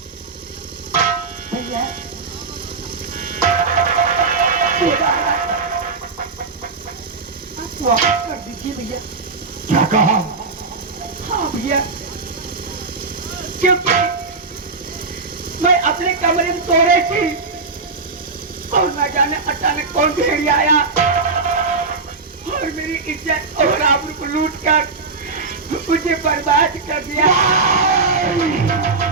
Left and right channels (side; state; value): left; quieter; 4.1 dB